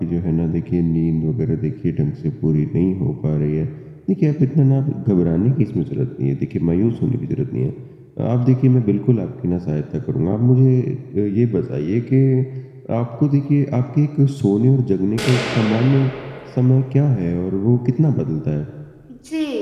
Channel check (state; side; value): identical; both; correlation 1.00